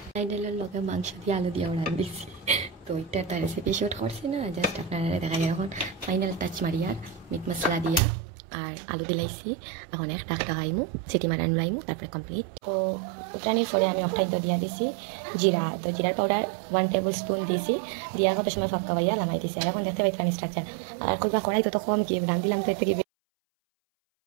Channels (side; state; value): left; drops out; at 8.0 s